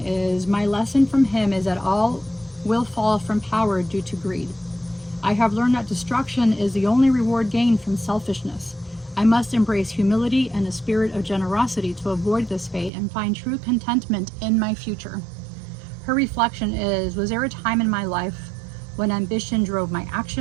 my lesson from him is that all will fall from power due to greed. I have learned that destruction is the only reward gained from selfishness. I must embrace humility and a spirit of generosity to avoid this fate and find true contentment in my future. Her reflection is, was there a time in my life when ambition drove my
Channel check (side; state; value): left; drops out; at 12.9 s